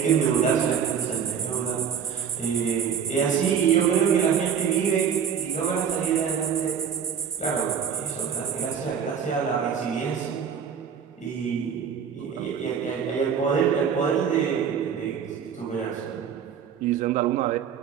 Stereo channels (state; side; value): quieter; left; 7.5 dB